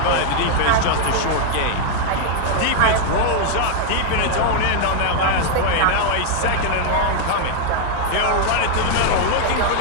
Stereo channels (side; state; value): both; different; correlation 0.00